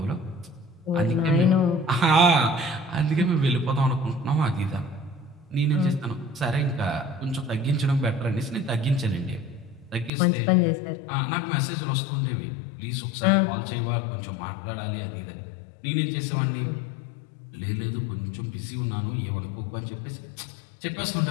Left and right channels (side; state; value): right; drops out; at 10.1 s